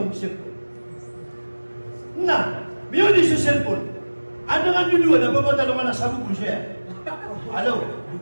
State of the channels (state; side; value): inverted; both; correlation -1.00